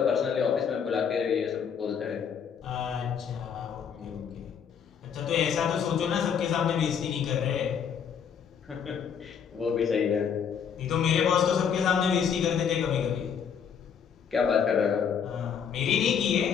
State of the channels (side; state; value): right; quieter; 7.3 dB